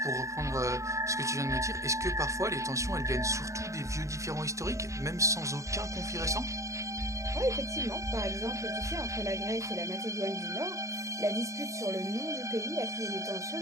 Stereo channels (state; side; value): late; left; 0.15 ms